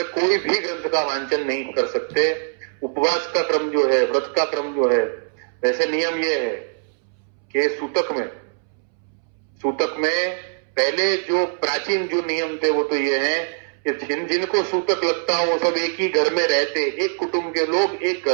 कोई भी ग्रंथ का वांचन नहीं कर सकते। उपवास का क्रम जो है, व्रत का क्रम जो है, वैसे नियम ये है कि सूतक में पहले जो प्राचीन जो नियम थे वो तो ये है कि जिनको सूतक लगता हो वो सब एक ही घर में रहते, एक कुटुंब के लोग एक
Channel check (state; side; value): silent; left; 64 dB below the other